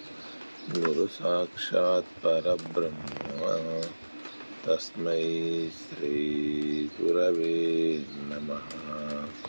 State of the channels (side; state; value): both; inverted; correlation -1.00